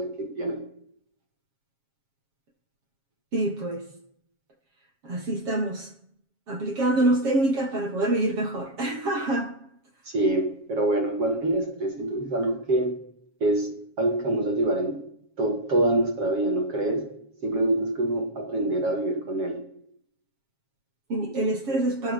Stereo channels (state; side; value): late; left; 7.3 ms